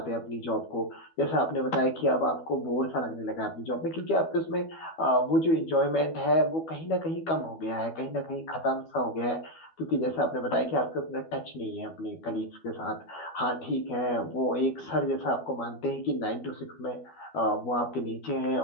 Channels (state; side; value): late; right; 12 ms